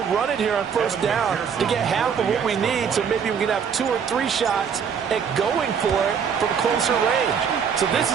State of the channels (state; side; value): quieter; left; 7.0 dB